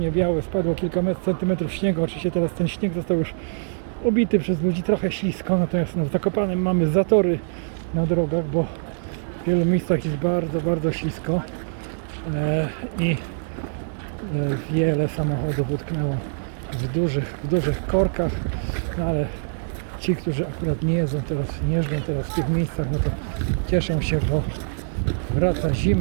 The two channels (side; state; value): left; silent; digital silence